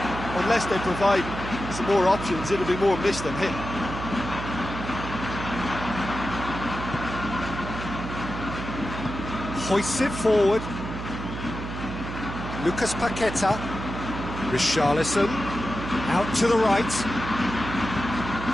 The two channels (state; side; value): noise; right; hum, 7 dB below the sound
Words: unless they provide some more options, it'll be more miss than hit. Hoists it forward. Lucas Paqueta. Richarlison. Out to the right.